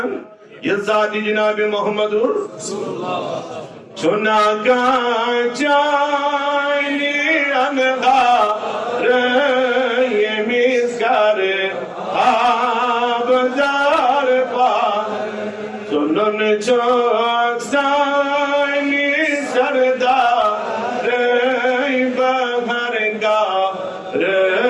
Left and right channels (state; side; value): identical; both; correlation 1.00